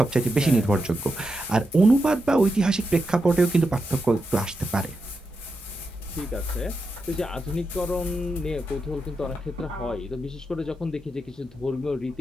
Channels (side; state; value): both; normal; correlation 0.87